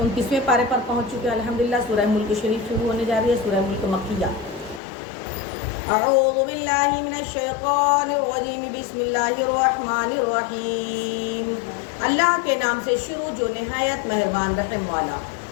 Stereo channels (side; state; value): right; drops out; at 4.8 s